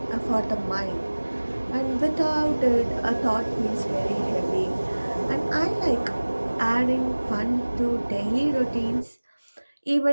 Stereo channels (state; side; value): inverted; both; correlation -1.00